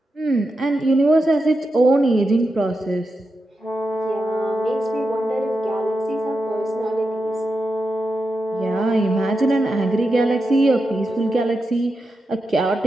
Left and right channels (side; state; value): both; normal; correlation 0.88